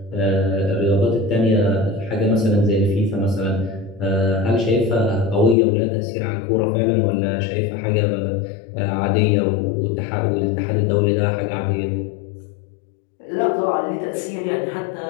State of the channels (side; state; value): right; drops out; at 5.6 s